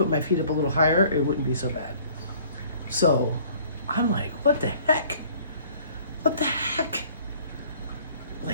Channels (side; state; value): both; inverted; correlation -0.54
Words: my feet up a little higher, it wouldn't be so bad. So I'm like, what the heck? What the heck?